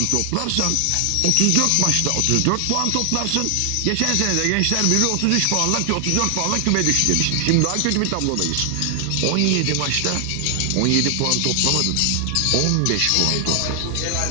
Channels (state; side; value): different; both; correlation 0.00